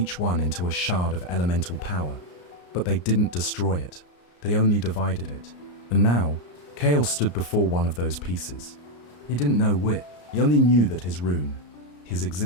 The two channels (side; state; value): right; late; 34 ms